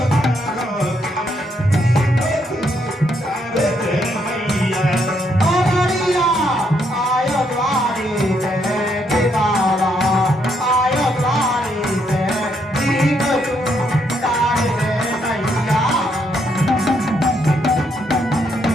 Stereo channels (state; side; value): normal; both; correlation 0.75